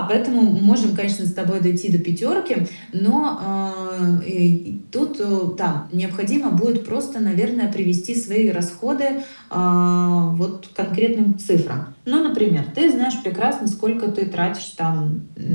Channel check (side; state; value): both; inverted; correlation -1.00